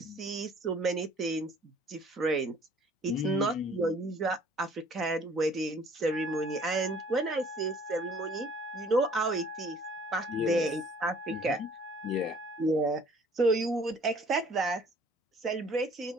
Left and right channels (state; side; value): normal; both; correlation 0.55